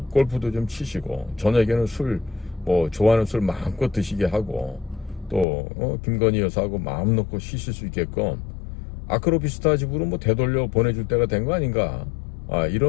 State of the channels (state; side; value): drops out; right; at 5.5 s